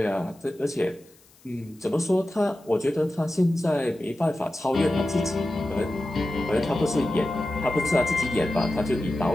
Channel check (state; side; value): noise; left; hiss, 29 dB below the sound